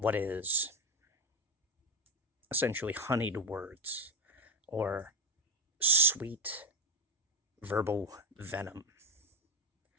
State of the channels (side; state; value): both; normal; correlation 0.12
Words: is essentially honeyed words or sweet verbal venom